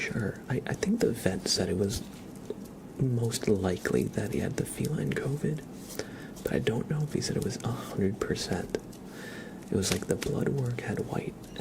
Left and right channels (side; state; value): both; identical; correlation 1.00